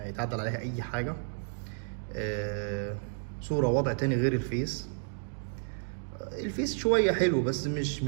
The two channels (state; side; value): silent; left; digital silence